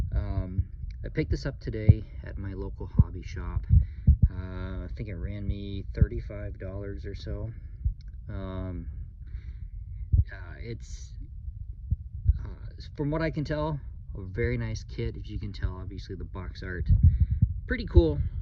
I picked this up today at my local hobby shop. I think it ran me $35 or so. It's, from what I can tell, a very nice kit. As you can tell, obviously the box art pretty cool,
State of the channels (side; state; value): both; identical; correlation 1.00